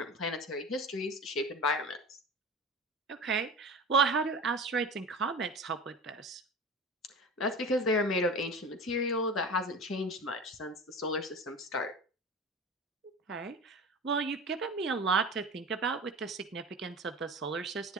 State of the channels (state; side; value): normal; both; correlation 0.33